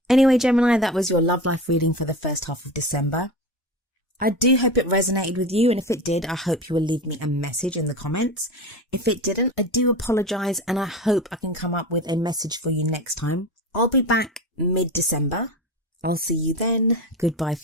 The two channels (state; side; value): normal; both; correlation 0.28